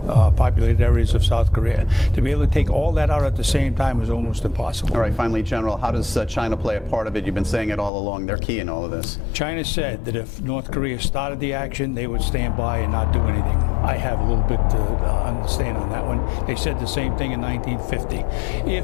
populated areas of South Korea. To be able to take all that out at the same time is almost impossible. All right, finally, General, how does China play a part of it? You've been saying it all along. They're key in all of this. China said that if North Korea started the action, they would stand by and not do anything. I have a little bit to understand on that one. They said the same thing in 1950.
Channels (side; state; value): right; drops out; at 7.9 s